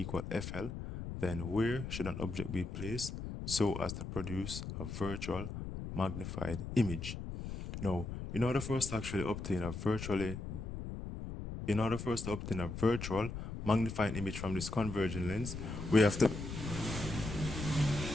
FL, then where should an object be placed so as to produce a virtual magnified image? Now, in order for us to actually obtain a virtual magnifying image from this convergent lens, we have to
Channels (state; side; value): noise; left; rumble, 7 dB below the sound